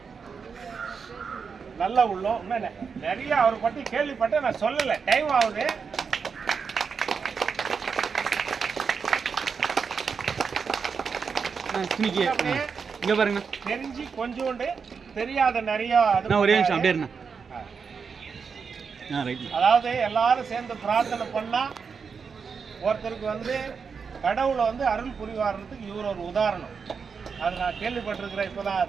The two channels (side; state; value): left; quieter; 5.8 dB